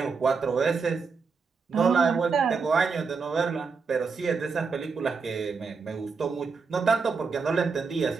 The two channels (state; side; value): quieter; left; 5.0 dB